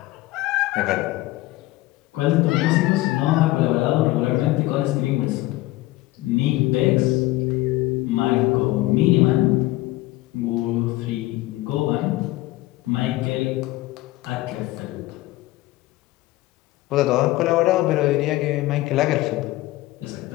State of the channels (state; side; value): quieter; right; 18.0 dB